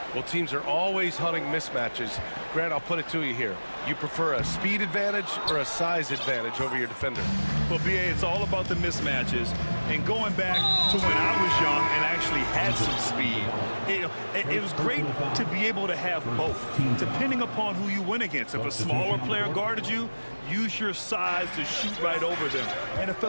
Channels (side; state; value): both; inverted; correlation -1.00